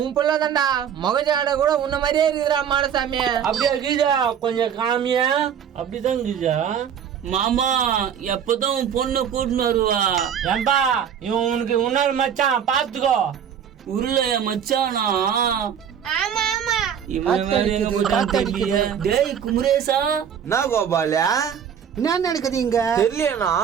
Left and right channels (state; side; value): quieter; left; 8.3 dB